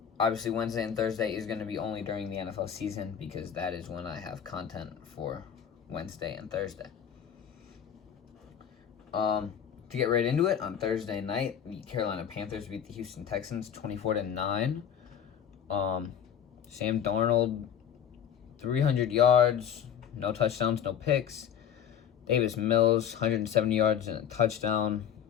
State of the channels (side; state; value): right; quieter; 8.7 dB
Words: Obviously, Wednesday and Thursday is going to be only during the NFL season because that is when I have content for Wednesday and Thursday. To get right into it, on Thursday night, the Carolina Panthers beat the Houston Texans 24-9. Sam Darnold, 300 yards, no touchdowns, no picks. Davis Mills, 170 yards and a touchdown.